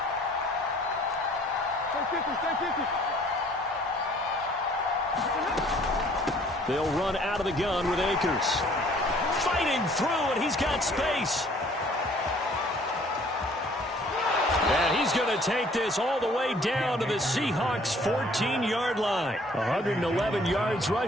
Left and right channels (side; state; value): both; normal; correlation 0.57